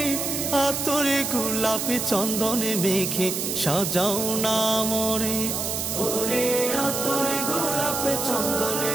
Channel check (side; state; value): right; noise; hiss, 2 dB below the sound